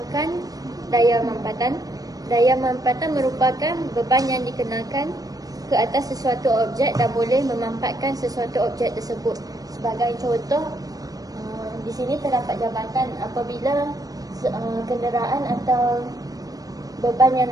daya mampatan. Daya mampatan merupakan beban yang dikenakan ke atas sesuatu objek dan boleh memampatkan sesuatu objek tersebut. Sebagai contoh, di sini terdapat jabatan. Apabila kenderaan atau beban yang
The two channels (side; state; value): left; late; 0.18 ms